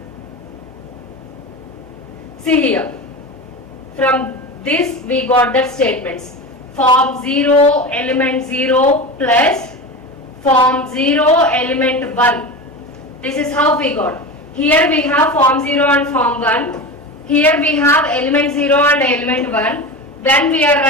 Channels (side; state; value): both; normal; correlation 0.26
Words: See here. From this we got the statements. Form 0 element 0 plus form 0 element 1. This is how we got. Here we have form 0 and form 1. Here we have element 0 and element 1. When we are